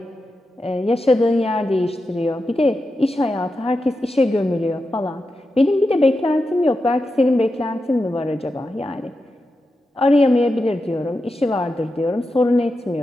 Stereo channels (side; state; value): both; normal; correlation 0.89